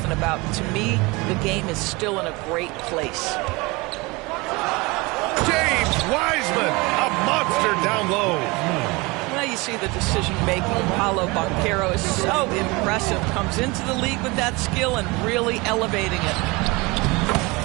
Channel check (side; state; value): left; quieter; 24.7 dB